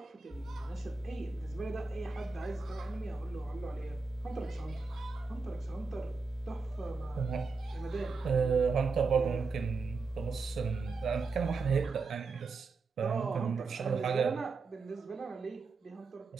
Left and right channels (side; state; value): left; quieter; 4.3 dB